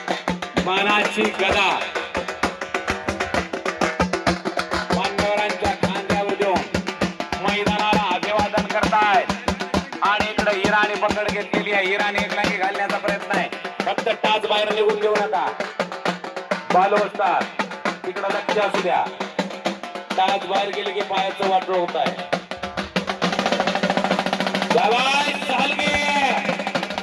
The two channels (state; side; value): identical; both; correlation 1.00